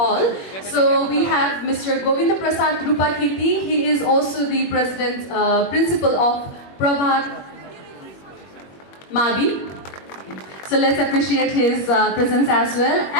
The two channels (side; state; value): right; late; 21 ms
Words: So we have Mr. Govinda Prasad Rupakirti. He is also the president, principal of Prabhat Mabi. So let's appreciate his presence as well.